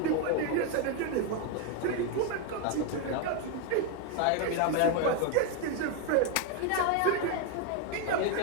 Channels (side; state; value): both; different; correlation 0.01